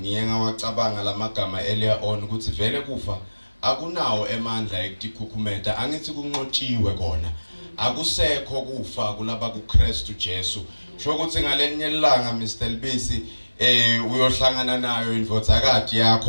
Ngiye ngawacabanga lamagama earlier on ukuthi vele kufa akunawo emandla ekukhukhumeta, angithi kunqotshiwe kona. Akusekho kufa kulaba kuKristu Jesu. Sho ukuthi ngalenye ilanga Mr Lubisi uyohlangana nayo indvodzakati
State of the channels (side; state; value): both; inverted; correlation -1.00